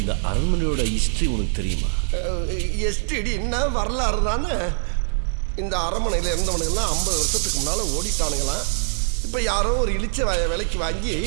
அரண்மனையோட ஹிஸ்டரி உனக்கு தெரியுமா? எஸ்டிடி என்ன வரலாறு தானே. இந்த அரண்மனையில் இருந்தவனுங்கெல்லாம் 50 வருஷத்துக்கு முன்னால ஓடிட்டானுங்களாம். இப்போ யாரோ ஒரு இழிச்ச விலைக்கு வாங்கி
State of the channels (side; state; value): left; silent; digital silence